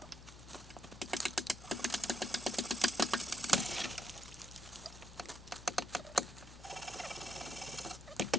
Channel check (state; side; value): noise; left; hum, 15 dB below the sound